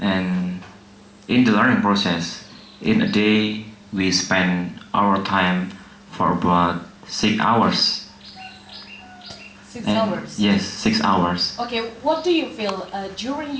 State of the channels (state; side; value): identical; both; correlation 1.00